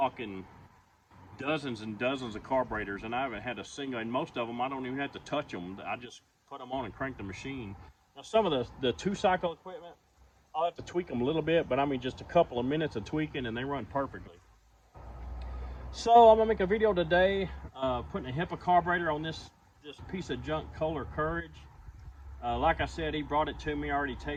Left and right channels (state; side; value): identical; both; correlation 1.00